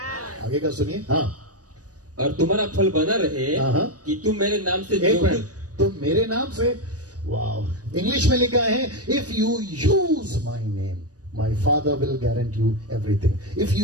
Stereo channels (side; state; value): left; late; 0.67 ms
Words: आगे का सुनिए। हाँ, और तुम्हारा फल बना रहे हाँ। कि तुम मेरे नाम से एक जो मिनट, तो मेरे नाम से, वाह। इंग्लिश में लिखा है if you use my name my father will guarantee you everything. If